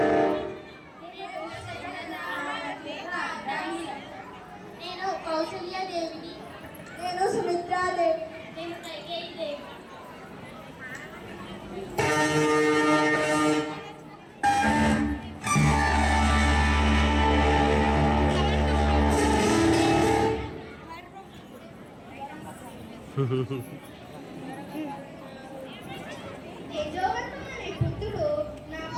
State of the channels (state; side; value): identical; both; correlation 1.00